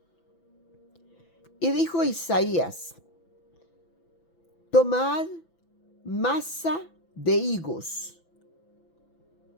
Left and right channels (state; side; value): late; right; 6.0 ms